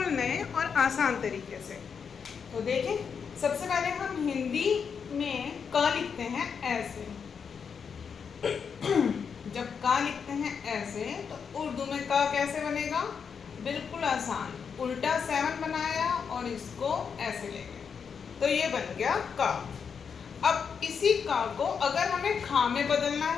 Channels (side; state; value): right; quieter; 6.5 dB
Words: नए और आसान तरीके से। तो देखें, सबसे पहले हम हिंदी में क लिखते हैं ऐसे। जब क लिखते हैं ऐसे तो उर्दू में क कैसे बनेगा? बिल्कुल आसान, उल्टा 7 बनाया और इसको ऐसे ले गए तो ये बन गया क। अब इसी क को अगर हमें खा में बदलना